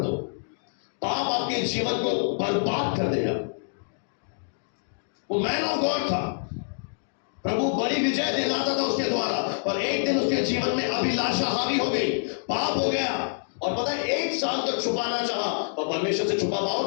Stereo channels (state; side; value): silent; right; digital silence